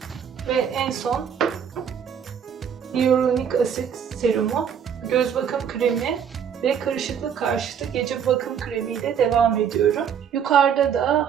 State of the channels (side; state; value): left; quieter; 7.9 dB